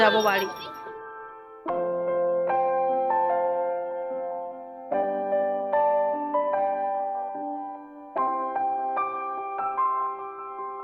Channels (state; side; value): identical; both; correlation 1.00